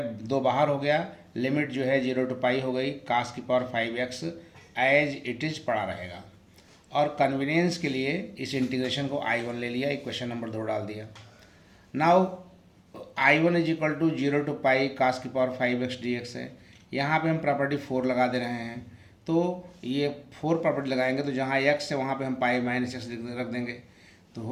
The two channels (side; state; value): both; identical; correlation 1.00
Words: दो बाहर हो गया, लिमिट जो है 0 to पाई हो गई, कास की power 5x as it is पड़ा रहेगा। और कन्वीनियंस के लिए इस इंटीग्रेशन को I1 ले लिया, इक्वेशन नंबर 2 डाल दिया। Now I1 is equal to 0 to pi cos की पावर 5x dx है। यहाँ पे हम प्रॉपर्टी 4 लगा दे रहे हैं, तो ये 4 प्रॉपर्टी लगाएंगे तो जहाँ x है वहाँ पे हम पाई माइनस एक्स रख देंगे, तो